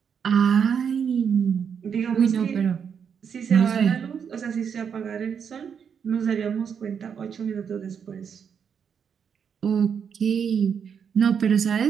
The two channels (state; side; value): quieter; left; 7.2 dB